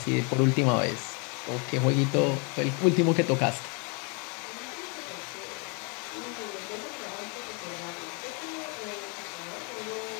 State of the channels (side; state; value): right; quieter; 34.0 dB